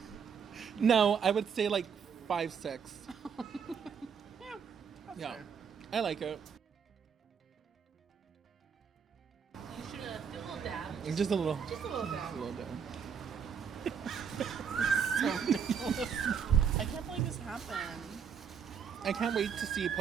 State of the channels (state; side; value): quieter; left; 6.9 dB